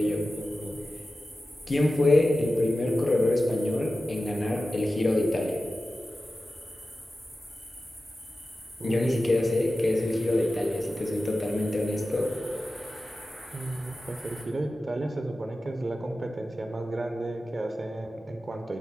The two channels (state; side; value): normal; both; correlation 0.94